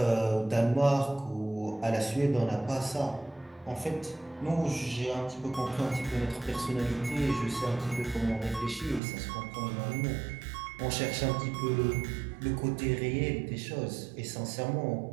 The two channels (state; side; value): drops out; left; at 9.0 s